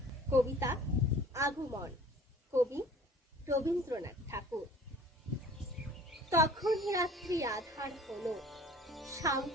কবিতা আগমন, কবি রবীন্দ্রনাথ ঠাকুর। তখন রাত্রি আধার হলো,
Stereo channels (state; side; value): normal; both; correlation 0.48